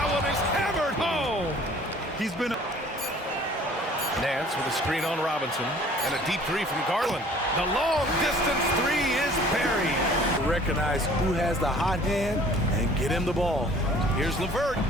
one is hammered home. He's been... Nance with a screen on Robinson. And a deep 3 from Garland. The long distance 3 is buried. Recognize who has the hot hand and get him the ball. Here's LeVert.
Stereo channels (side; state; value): both; normal; correlation 0.52